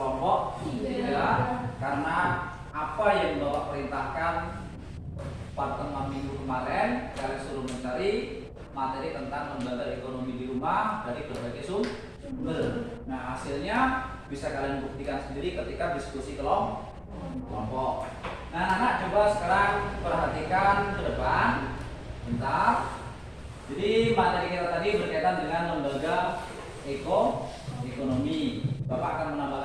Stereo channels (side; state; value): both; identical; correlation 1.00